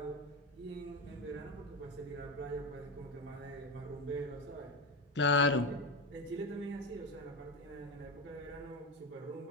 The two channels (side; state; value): both; normal; correlation 0.17